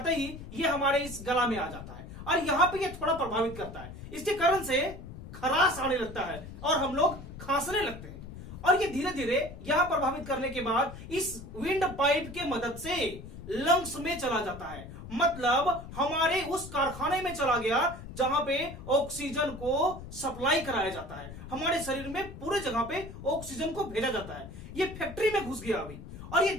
ही ये हमारे इस गला में आ जाता है और यहां पे ये थोड़ा प्रभावित करता है। इसके कारण से खराश आने लगता है और हम लोग खांसने लगते हैं और ये धीरे धीरे यहां प्रभावित करने के बाद इस विंड पाइप के मदद से लंग्स में चला जाता है, मतलब हमारे उस कारखाने में चला गया जहां पे ऑक्सीजन को सप्लाई कराया जाता है। हमारे शरीर में पूरे जगह पे ऑक्सीजन को भेजा जाता है। ये फैक्ट्री में घुस गया अभी और ये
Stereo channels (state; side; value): noise; left; rumble, 13 dB below the sound